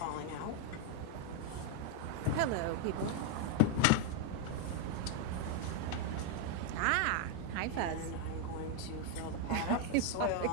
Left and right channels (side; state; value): both; different; correlation 0.01